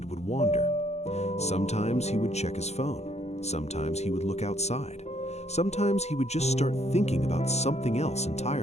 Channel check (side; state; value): right; late; 0.32 ms